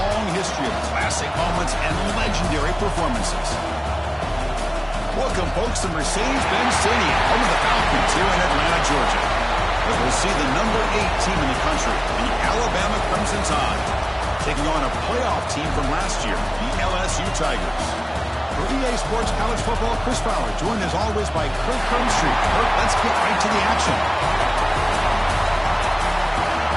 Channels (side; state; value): both; identical; correlation 1.00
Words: history of classic moments and legendary performances. Welcome, folks, to Mercedes-Benz Stadium, home of the Falcons here in Atlanta, Georgia. As we'll see the number 8 team in the country, the Alabama Crimson Tide, taking on a playoff team from last year, the LSU Tigers. For EA Sports College Football, Chris Fowler, joined as always by Kirk Crumstreet. Kirk, let's get right to the action.